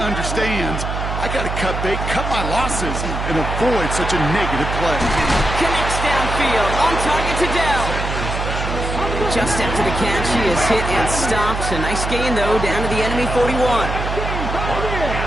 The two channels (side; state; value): right; noise; hum, 4 dB below the sound